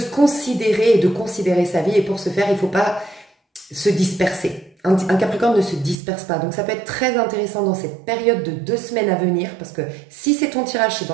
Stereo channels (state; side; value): drops out; left; at 6.0 s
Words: considérer et de considérer sa vie. Et pour ce faire, il ne faut pas se disperser. Un Capricorne ne se disperse pas. Donc ça peut être très intéressant dans cette période de 2 semaines à venir, parce que si c'est ton tirage, c'est